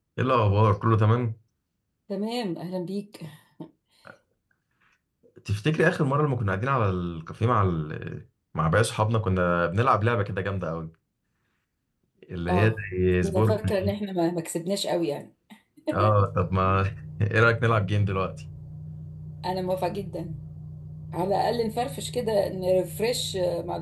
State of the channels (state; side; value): identical; both; correlation 1.00